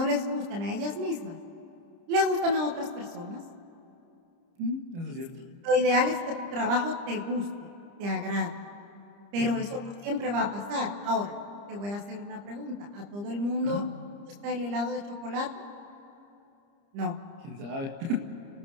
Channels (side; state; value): left; late; 30 ms